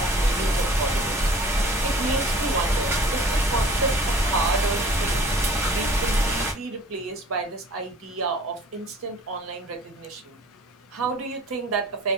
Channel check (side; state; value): both; normal; correlation 0.49